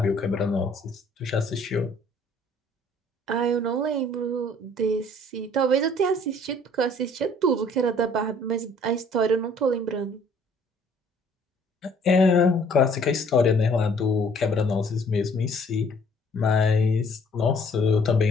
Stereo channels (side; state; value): both; normal; correlation 0.58